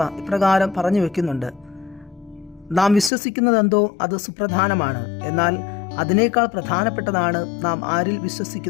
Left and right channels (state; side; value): drops out; right; at 3.1 s